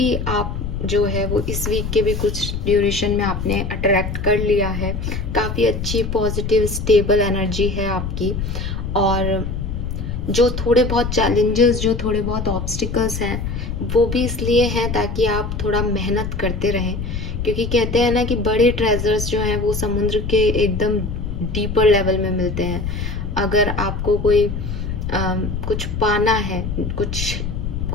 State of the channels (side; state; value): left; noise; rumble, 4 dB below the sound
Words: आप जो है वो इस वीक के भी कुछ ड्यूरेशन में आपने अट्रैक्ट कर लिया है। काफ़ी अच्छी पॉजिटिव स्टेबल एनर्जी है आपकी। और जो थोड़े बहुत चैलेंजेस, जो थोड़े बहुत ऑब्स्टिकल्स हैं, वो भी इसलिए हैं ताकि आप थोड़ा मेहनत करते रहें। क्योंकि कहते हैं ना कि बड़े ट्रेजर्स जो हैं वो समुद्र के एकदम डीपर लेवल में मिलते हैं। अगर आपको कोई कुछ पाना है,